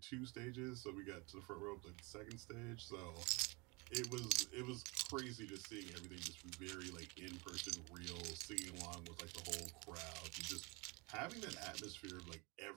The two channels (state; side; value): quieter; left; 27.6 dB